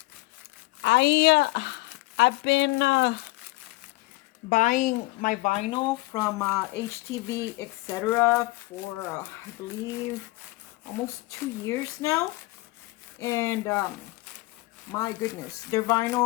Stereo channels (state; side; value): quieter; right; 21.4 dB